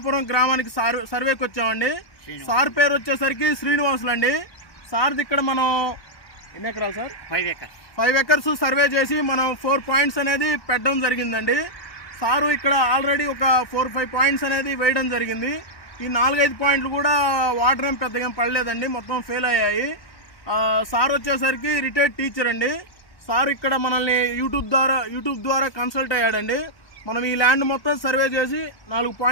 గ్రామానికి సర్వేకి వచ్చామండి. సార్ పేరు వచ్చేసరికి శ్రీనివాసులు అండి. సార్ది ఇక్కడ మనం ఎన్ని ఎకరాలు సార్? 5 ఎకర్స్ సర్వే చేసి మనం 4 పాయింట్స్ అనేది పెట్టడం జరిగిందండి. సారు ఇక్కడ ఆల్రెడీ ఒక 4-5 పాయింట్స్ అనేది వేయడం జరిగింది. ఈ 4-5 పాయింట్లు కూడా వాటర్ ఏం పెద్దగా పడలేదండి, మొత్తం ఫెయిల్ అయ్యాయి. సార్ వచ్చేసరికి రిటైర్డ్ టీచర్ అండి. సార్ ఇక్కడ మనల్ని యూట్యూబ్ ద్వారా కన్సల్ట్ అయ్యాడండి. మనం ఈ ల్యాండ్ మొత్తం సర్వే చేసి 4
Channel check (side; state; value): right; late; 1.2 ms